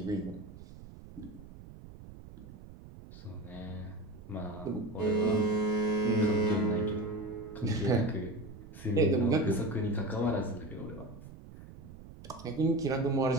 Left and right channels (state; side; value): noise; right; rumble, 16 dB below the sound